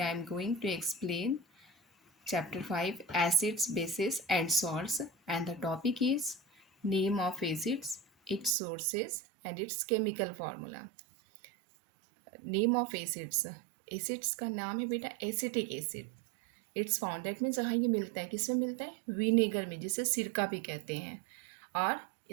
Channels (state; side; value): drops out; left; at 8.5 s